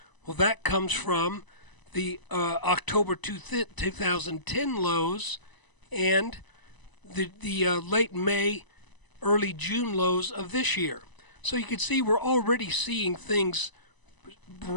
Well, that comes from the October 2010 lows and the late May, early June lows of this year. So you can see we're already seeing things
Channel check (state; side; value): late; right; 1.0 ms